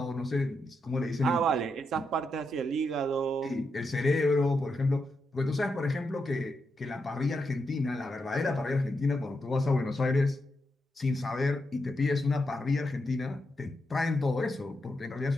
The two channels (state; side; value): normal; both; correlation 0.84